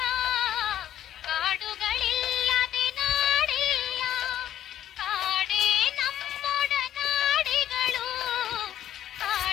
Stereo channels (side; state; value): right; quieter; 11.5 dB